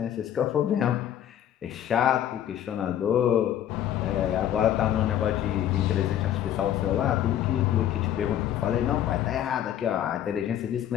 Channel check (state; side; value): quieter; right; 10.9 dB